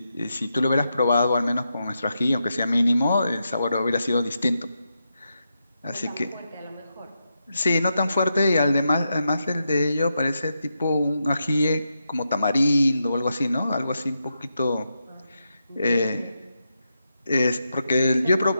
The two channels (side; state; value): both; inverted; correlation -0.86